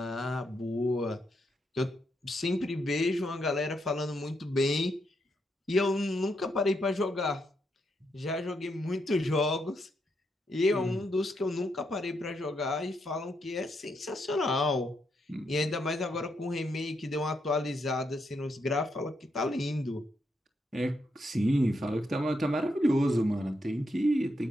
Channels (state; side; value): normal; both; correlation 0.80